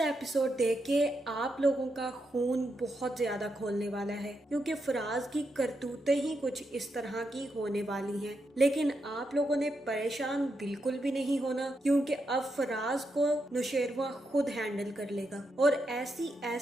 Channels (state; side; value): normal; both; correlation 0.83